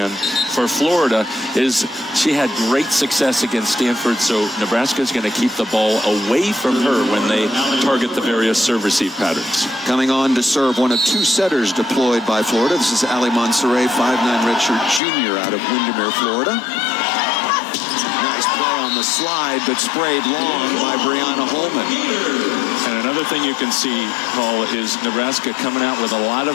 for Florida, she had great success against Stanford. So Nebraska is going to keep the ball away from her when they target the various serve-receive patterns. Coming on to serve, one of 2 setters deployed by Florida. This is Ali Monserrat, 5'9" redshirt junior out of Windermere, Florida. Nice play on the slide, but sprayed long by Brianna Holman. And another thing you can see, Paul, is Nebraska coming out with a lot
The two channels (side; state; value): right; drops out; at 15.0 s